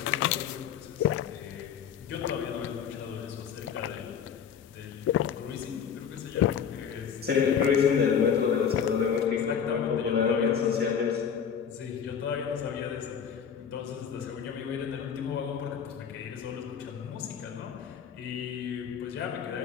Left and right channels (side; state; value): right; quieter; 7.7 dB